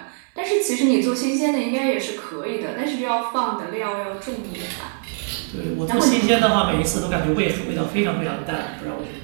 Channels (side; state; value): left; silent; digital silence